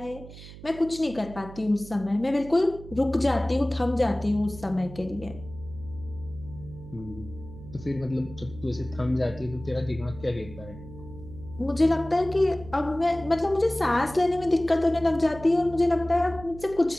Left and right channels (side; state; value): right; noise; hum, 16 dB below the sound